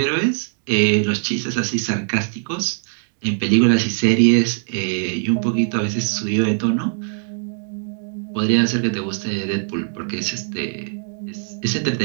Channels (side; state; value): left; silent; 61 dB below the other